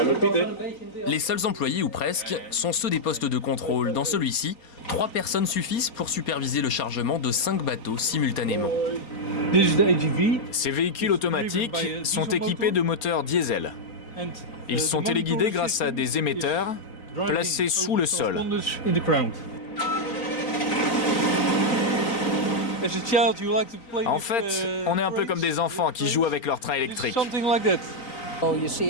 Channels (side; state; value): right; late; 4.3 ms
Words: Les seuls employés, ou presque, sont ceux des postes de contrôle. Dans celui-ci, 3 personnes suffisent pour superviser le chargement de 5 bateaux simultanément. Ces véhicules automatiques sont équipés de moteurs diesel. Ils sont téléguidés grâce à des émetteurs placés sous le sol. En fait, on est un peu comme des enfants qui jouent avec leur train électrique.